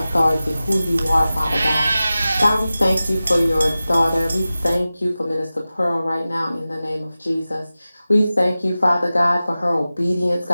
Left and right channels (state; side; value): inverted; both; correlation -0.96